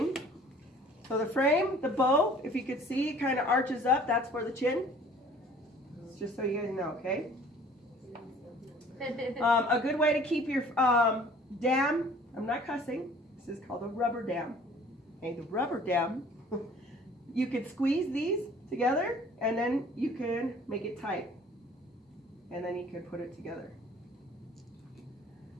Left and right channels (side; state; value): both; normal; correlation 0.51